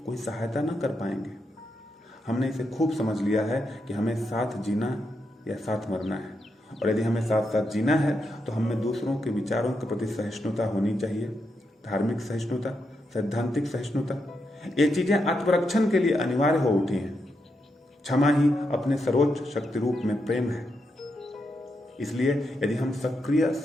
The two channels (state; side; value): normal; both; correlation 0.83